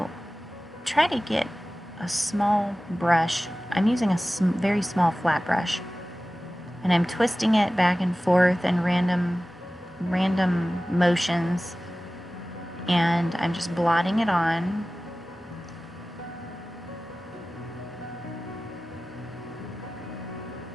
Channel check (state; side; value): normal; both; correlation 0.96